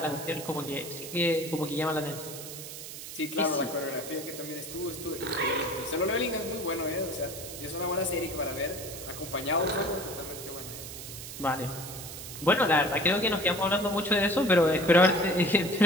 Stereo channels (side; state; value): right; noise; hiss, 10 dB below the sound